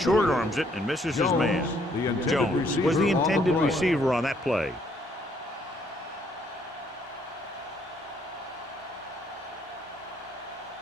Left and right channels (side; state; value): both; normal; correlation 0.67